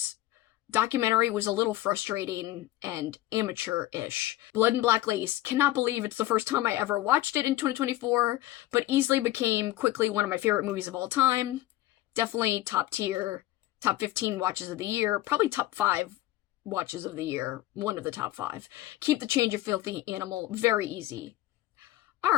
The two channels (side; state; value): right; quieter; 15.5 dB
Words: documentary was a little frustrating and amateur-ish. Blood and Black Lace. Cannot believe it's the first time I ever watched it in 2024, but easily became quickly one of my favorite movies of all time. Definitely top tier, top 15 watches of the year, probably top 5 watches of the year, one of the top 5. Keep the Change, You Filthy Animal, very easy.